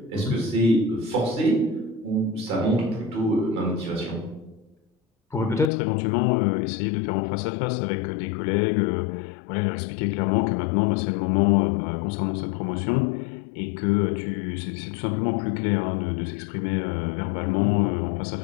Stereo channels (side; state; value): right; drops out; at 5.7 s